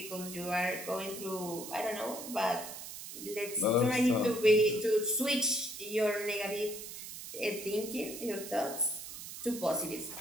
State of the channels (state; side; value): noise; right; hiss, 10 dB below the sound